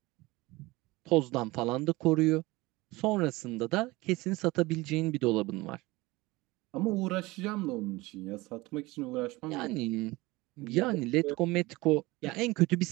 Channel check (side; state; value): left; quieter; 21.4 dB